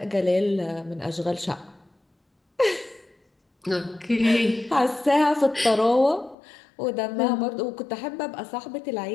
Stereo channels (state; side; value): drops out; right; at 6.4 s